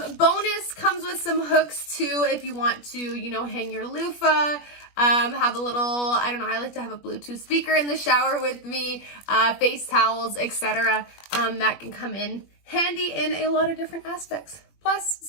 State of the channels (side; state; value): right; late; 21 ms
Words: Bonus comes with some hooks too if you want to, hang your loofah, have a little, I don't know, I like to have a Bluetooth speaker in the shower with me, face towels, etc. That can come in handy in a lot of different aspects. Plus